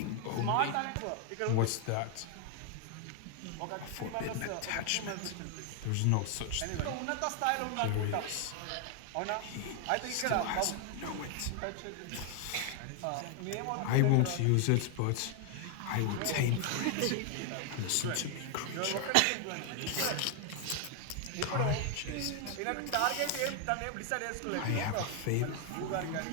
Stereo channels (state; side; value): different; both; correlation 0.00